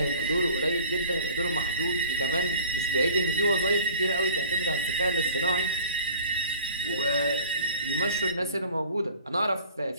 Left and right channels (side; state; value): both; inverted; correlation -0.46